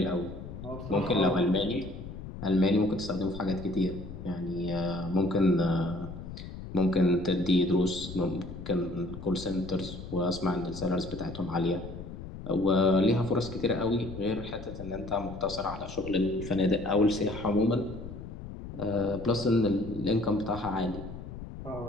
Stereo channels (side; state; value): left; noise; rumble, 11 dB below the sound